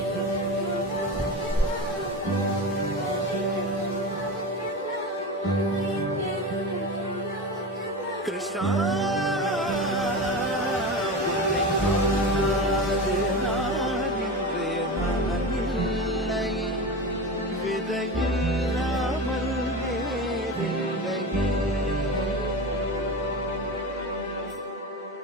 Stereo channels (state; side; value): normal; both; correlation 0.25